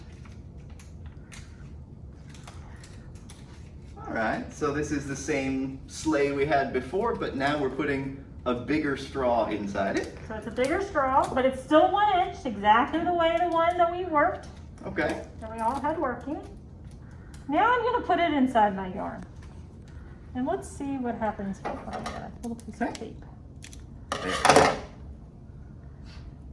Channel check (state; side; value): identical; both; correlation 1.00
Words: All right, so this is the same sleigh we had before, but now we're putting a bigger straw inside it. So it's a bigger straw, but it's still 1 inch, exactly the way the one that we worked, Okay. that we all had working. Now I'm going to put it inside my yarn. And let's see what happens when I get a little piece of tape. There.